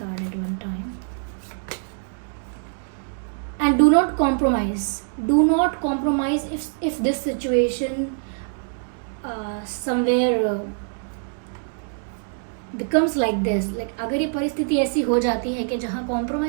at one time. and do not compromise if this situation somewhere becomes like this, like अगर ये परिस्थिति ऐसी हो जाती है कि जहाँ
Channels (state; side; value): silent; left; digital silence